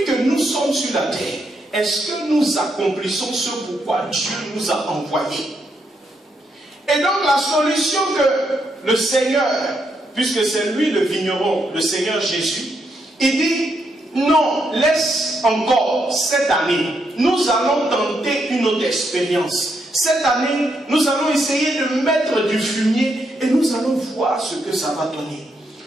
que nous sommes sur la terre, est-ce que nous accomplissons ce pourquoi Dieu nous a envoyés? Et donc la solution que le Seigneur, puisque c'est lui le vigneron, le Seigneur Jésus, il dit, non, laisse encore cette année, nous allons tenter une autre expérience. Cette année, nous allons essayer de mettre du fumier et nous allons voir ce que ça va donner.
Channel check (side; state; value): both; normal; correlation 0.79